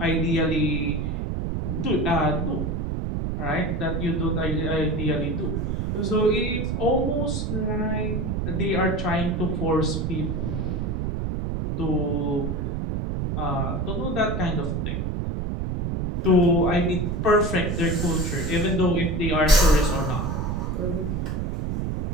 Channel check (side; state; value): right; noise; rumble, 1 dB below the sound